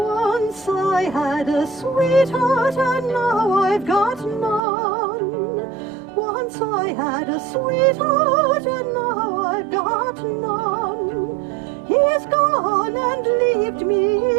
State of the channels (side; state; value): left; drops out; at 4.6 s